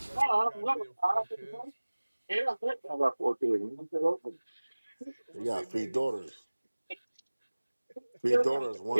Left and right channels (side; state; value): both; inverted; correlation -1.00